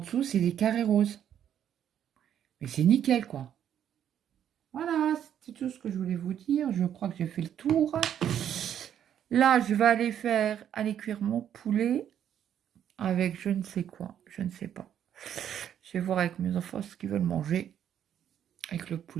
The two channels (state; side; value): quieter; left; 9.7 dB